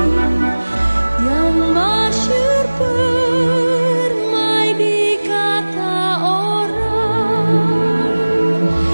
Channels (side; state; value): both; inverted; correlation -1.00